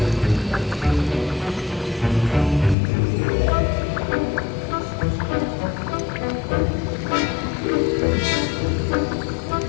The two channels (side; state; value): right; drops out; at 2.8 s